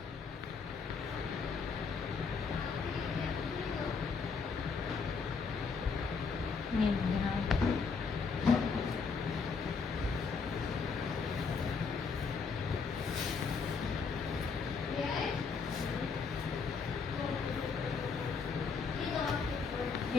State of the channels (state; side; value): quieter; right; 5.2 dB